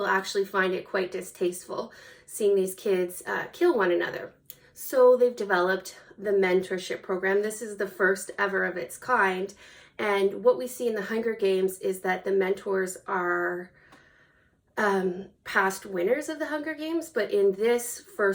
actually find it quite distasteful seeing these kids kill one another. So they've developed the mentorship program. This is the first ever of its kind, and what we see in the Hunger Games is that the mentors are past winners of the Hunger Games, but in this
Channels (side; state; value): both; identical; correlation 1.00